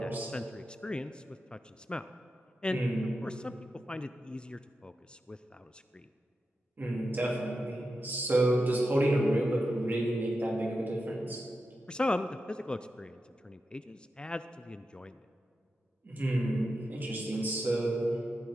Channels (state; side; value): normal; both; correlation 0.89